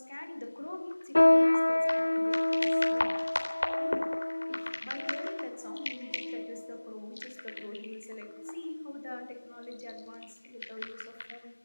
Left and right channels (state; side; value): inverted; both; correlation -1.00